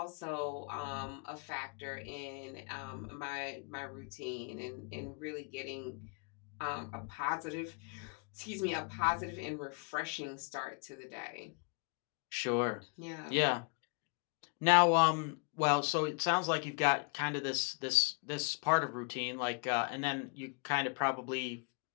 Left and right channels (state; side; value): quieter; right; 36.5 dB